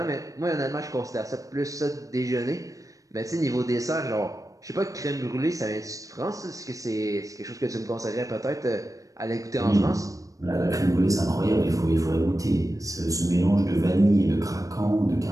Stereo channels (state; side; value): late; left; 0.16 ms